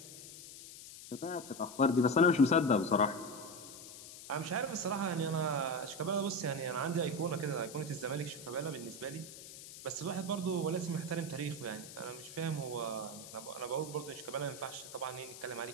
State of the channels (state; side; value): noise; left; hiss, 14 dB below the sound